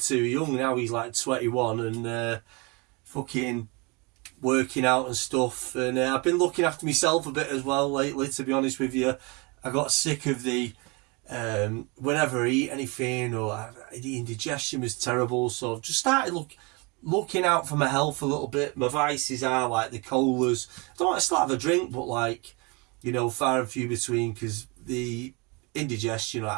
young. Now he's like 21 and fucking working out and stuff. And I've been looking after myself a bit as well lately, to be honest with you. I got sick of the whenever I eat anything, or the indigestion was terrible, so I've just started looking out for my health a little bit. My vices are like the colas. I still have a drink, but like, you know, far and few between, because the indigestion or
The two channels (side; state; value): left; quieter; 29.1 dB